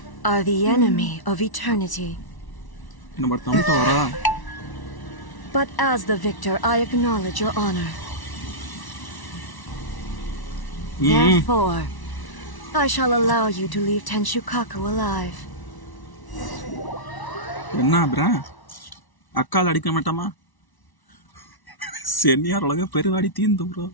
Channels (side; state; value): right; late; 1.1 ms